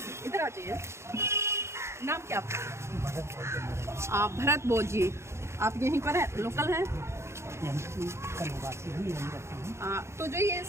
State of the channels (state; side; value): late; left; 0.13 ms